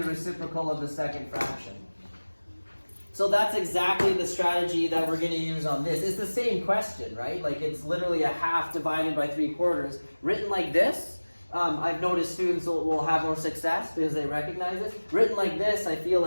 reciprocal of the second fraction. So that's exactly the strategy that we're going to use on this. It's the same question, right? Like it's literally a half divided by 3/4. Written like this, I've noticed students will have more success because they recognize it. Written like this, I feel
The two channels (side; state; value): both; inverted; correlation -1.00